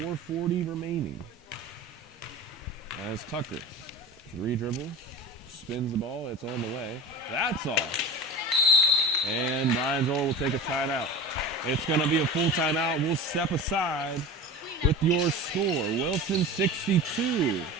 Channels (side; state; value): both; normal; correlation 0.30